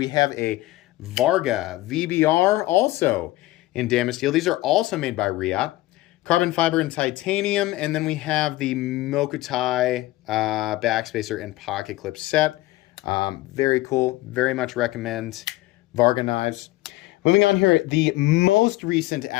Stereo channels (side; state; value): right; quieter; 17.8 dB